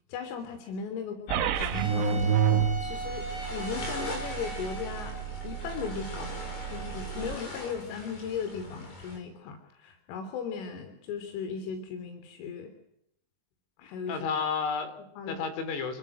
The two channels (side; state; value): right; late; 21 ms